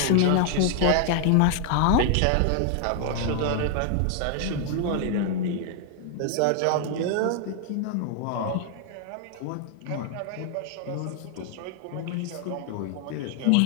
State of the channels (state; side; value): different; both; correlation 0.00